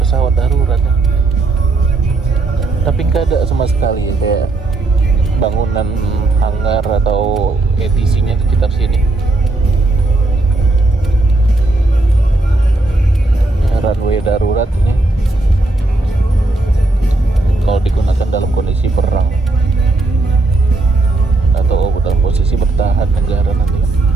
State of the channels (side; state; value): left; quieter; 3.1 dB